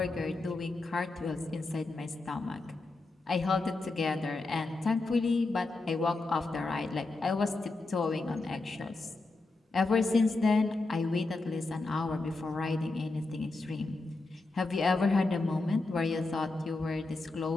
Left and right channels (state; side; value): quieter; right; 3.3 dB